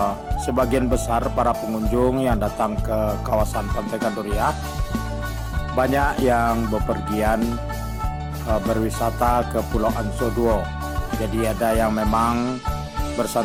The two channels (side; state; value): both; identical; correlation 1.00